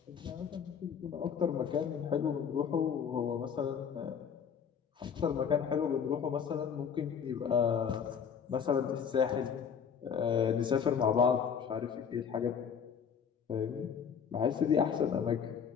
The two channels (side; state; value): right; quieter; 7.2 dB